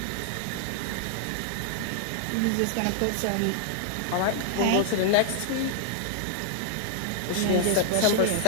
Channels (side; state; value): both; different; correlation -0.01